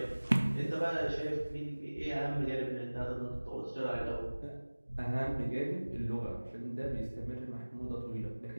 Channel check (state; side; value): inverted; both; correlation -1.00